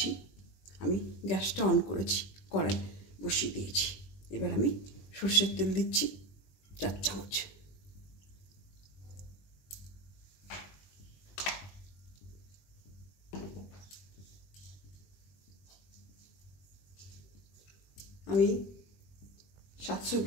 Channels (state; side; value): late; right; 20 ms